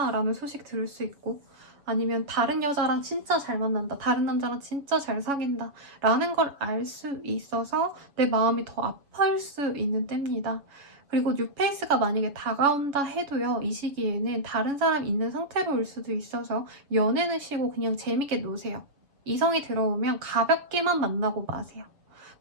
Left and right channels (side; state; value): left; late; 6.9 ms